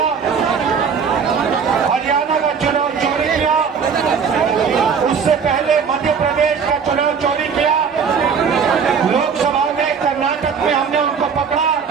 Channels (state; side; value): quieter; left; 6.3 dB